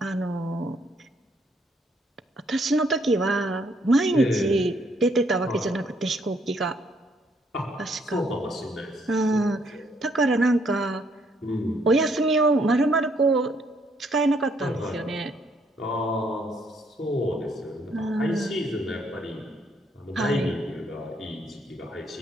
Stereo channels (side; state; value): both; normal; correlation 0.69